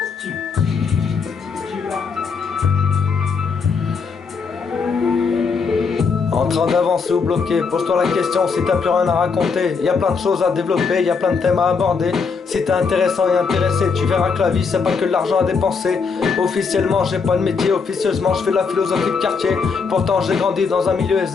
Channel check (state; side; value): quieter; right; 5.3 dB